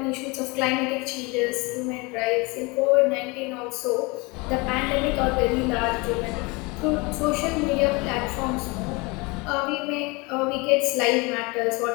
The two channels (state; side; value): quieter; right; 26.4 dB